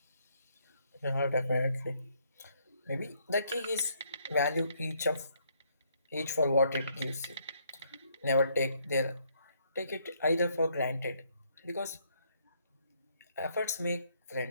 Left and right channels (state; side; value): inverted; both; correlation -0.70